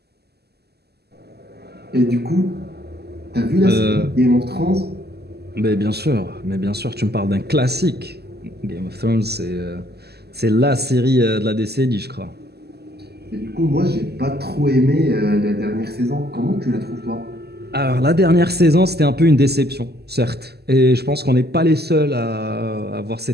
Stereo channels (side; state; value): left; late; 0.47 ms